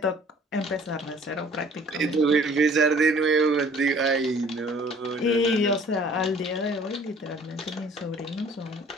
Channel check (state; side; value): normal; both; correlation 0.54